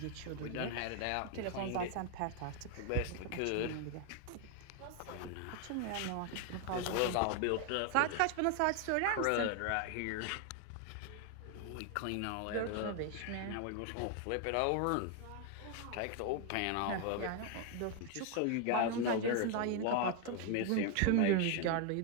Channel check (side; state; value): both; different; correlation 0.00